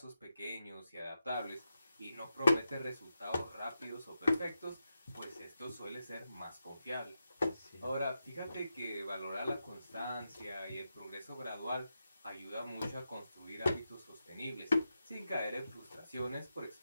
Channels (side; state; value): both; inverted; correlation -0.88